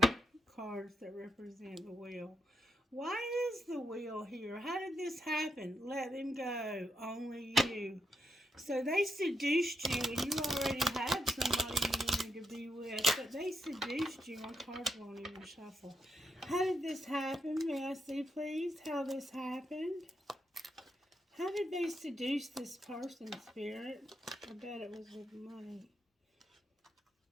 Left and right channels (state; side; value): normal; both; correlation 0.81